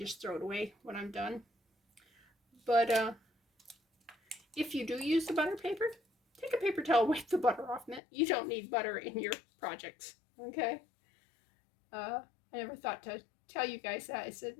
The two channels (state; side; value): drops out; right; at 8.0 s